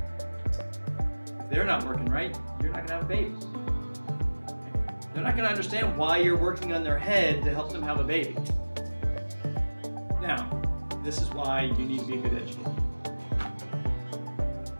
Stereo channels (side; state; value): both; inverted; correlation -1.00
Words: If they're not working right, you're not going to have a baby. They're not going to understand why you're working on their head to help them have a baby. Now, this is why you need to be a good educator.